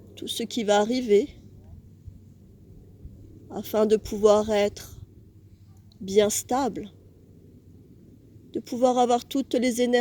tout ce qui va arriver, afin de pouvoir être bien stable, de pouvoir avoir toutes les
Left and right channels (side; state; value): both; identical; correlation 1.00